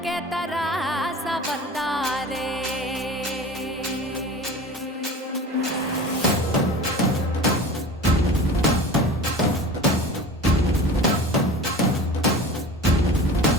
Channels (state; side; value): normal; both; correlation 0.36